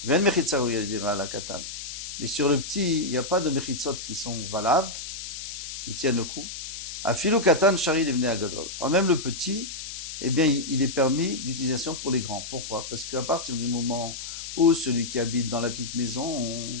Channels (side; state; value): left; noise; hiss, 8 dB below the sound